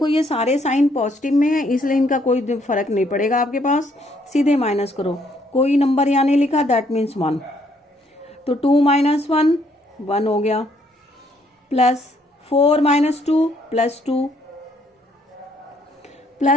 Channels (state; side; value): normal; both; correlation 0.68